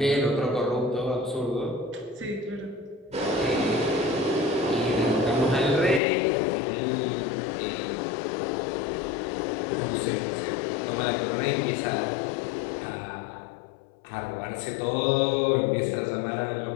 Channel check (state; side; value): drops out; right; at 6.0 s